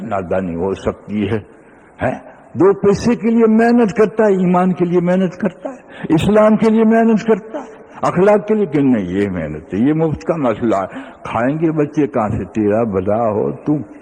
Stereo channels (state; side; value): identical; both; correlation 1.00